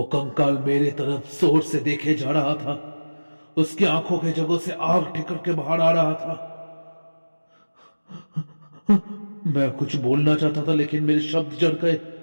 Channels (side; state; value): both; inverted; correlation -1.00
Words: कंकाल मेरे तरफ जोर से देखे जा रहा था। उसकी आंखों के जगहों से आग ठिकर के बाहर आ रहा था। मैं कुछ बोलना चाहता था लेकिन मेरे शब्द जड़ गए।